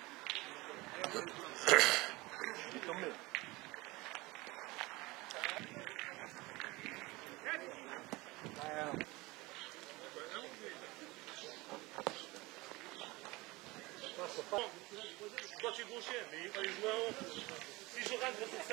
Il est tombé. Toi tu es gaucher, mais il fallait jouer en haut. Si je rentre sur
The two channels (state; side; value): quieter; left; 22.2 dB